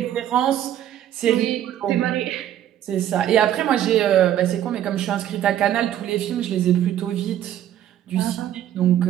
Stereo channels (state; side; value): quieter; left; 11.4 dB